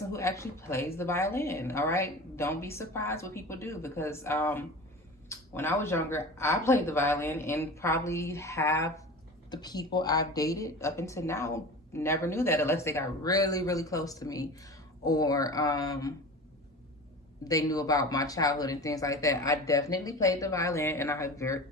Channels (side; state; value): both; normal; correlation 0.34